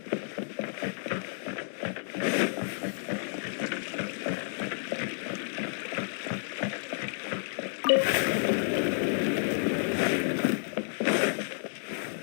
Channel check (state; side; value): silent; right; digital silence